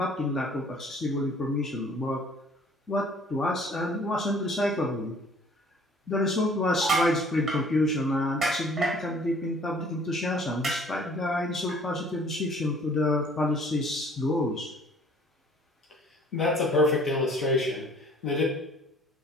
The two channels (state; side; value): normal; both; correlation 0.55